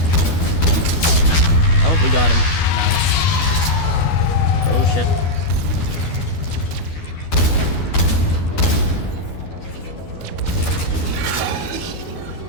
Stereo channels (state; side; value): late; right; 12 ms